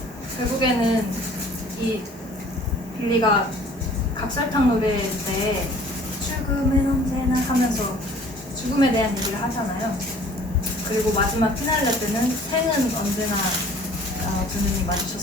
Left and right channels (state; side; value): normal; both; correlation 0.51